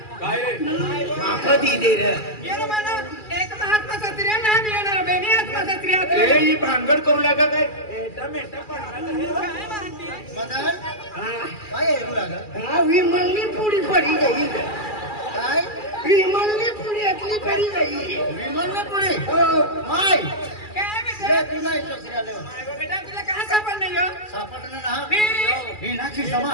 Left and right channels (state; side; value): late; right; 2.4 ms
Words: माफा दी दे रे एक महात्मा सत्रिया ना मिळणार बेनी आत्मा सत्रिया ए ही भांगड करू लागा काय काय म्हणते मदन काय येऊ लागा हा विमलनी पुडी पडी गई काय विमलनी पुडी अतली पडी गई विमान पुढे हो माय काय ले बेटा तुला इच्छा आले बेटा तुला कहाँ सापडलं यो सापडलं ना मी- ही नाची